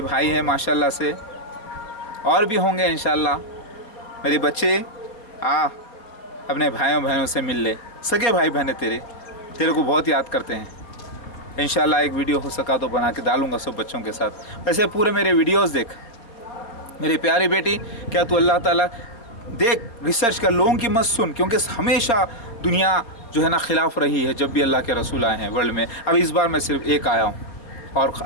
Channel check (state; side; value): late; right; 4.3 ms